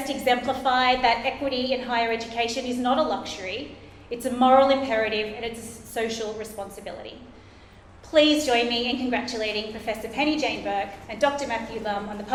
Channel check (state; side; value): identical; both; correlation 1.00